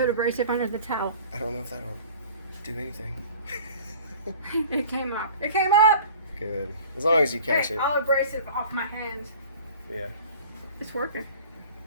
abrasive under the towel? I don't know if that'll do anything. It came up. It came up! Good. As long as you catch Hey, it. I'll abrasive off my hands. Yeah. It's working.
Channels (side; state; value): both; inverted; correlation -0.45